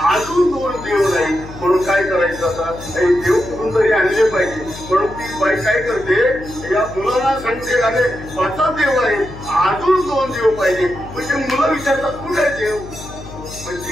अजून 2 देव नाही. म्हणून काय करायचं, आता हे देव कुठून तरी आणले पाहिजे. म्हणून ती बाई काय करते, या मुलांना सांगते, अरे 5च देव आहेत, अजून 2 देव पाहिजे. म्हणजे मुलं विचारतात कुठे देव,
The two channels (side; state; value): left; noise; hum, 14 dB below the sound